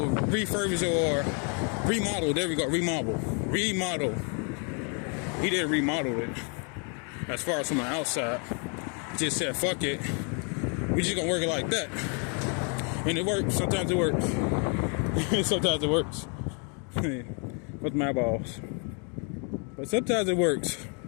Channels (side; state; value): right; quieter; 38.1 dB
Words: refurbish or remodel. There we go. Remodel. He didn't remodel it. As far as from the outside, he just said, "Fuck it. We just gonna work it like that." And it works. Sometimes it works. Sometimes it works. With my balls. But sometimes it works.